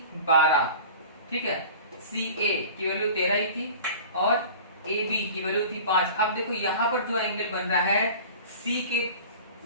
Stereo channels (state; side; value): inverted; both; correlation -0.40